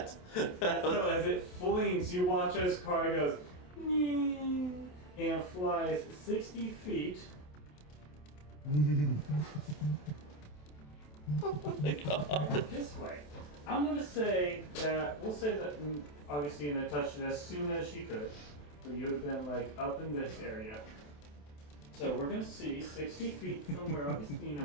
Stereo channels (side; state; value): right; late; 27 ms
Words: so as it flings, you watch as Kari goes, "Nyeh," and flies 60 feet. Oh my god. This way. I'm gonna say that we'll say that Augustina touched it as soon as she could. So you would have been like up in this area. So we're gonna see 60 feet from where Augustina